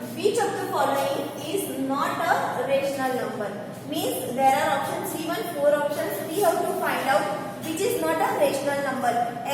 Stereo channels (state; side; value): identical; both; correlation 1.00